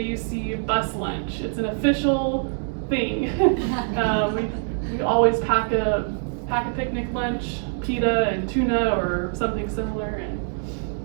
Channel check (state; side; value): silent; left; 62 dB below the other